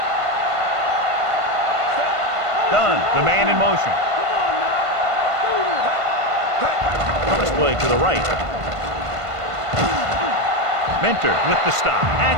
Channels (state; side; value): late; left; 1.5 ms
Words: Done. The man in motion. Cross play to the right. Mentor with the stop